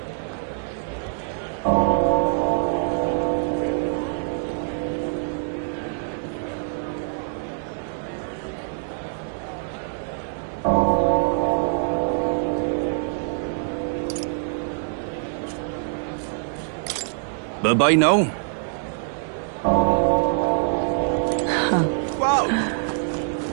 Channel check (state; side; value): silent; left; digital silence